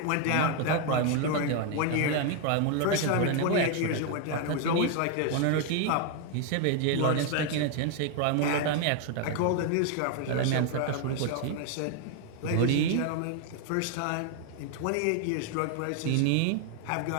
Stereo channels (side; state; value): both; different; correlation 0.00